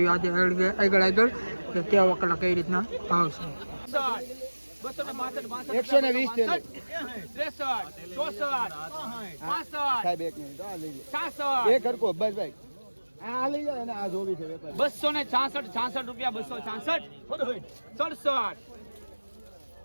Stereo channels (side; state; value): both; inverted; correlation -1.00